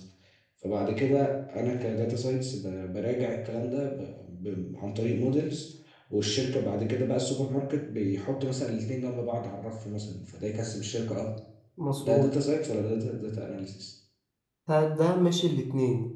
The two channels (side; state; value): both; identical; correlation 1.00